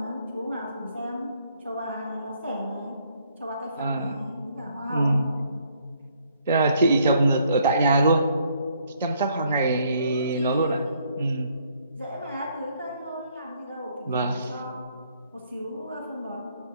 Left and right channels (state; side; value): inverted; both; correlation -0.67